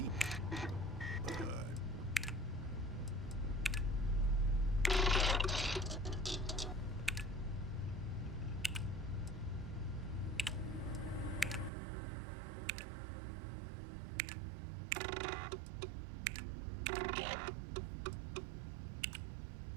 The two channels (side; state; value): left; drops out; at 11.7 s